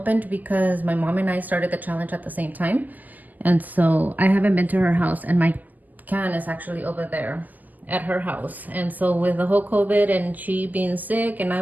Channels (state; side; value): late; left; 0.082 ms